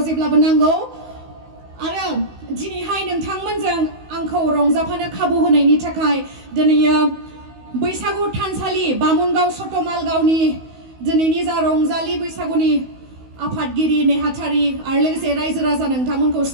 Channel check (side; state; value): left; late; 16 ms